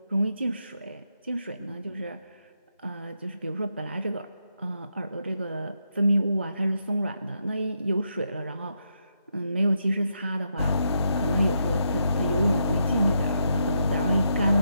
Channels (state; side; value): inverted; both; correlation -0.81